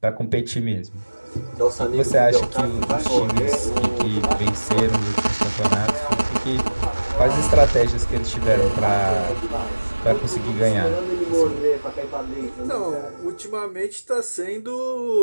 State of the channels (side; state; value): both; inverted; correlation -1.00